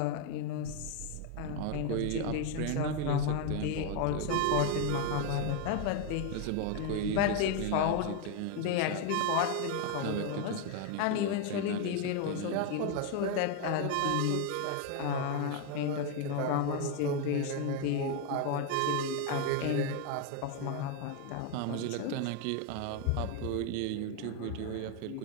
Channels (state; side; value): different; both; correlation 0.01